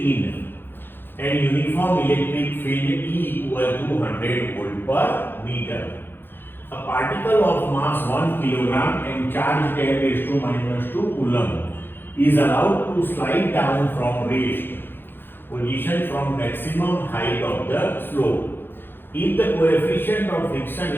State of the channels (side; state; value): right; late; 0.10 ms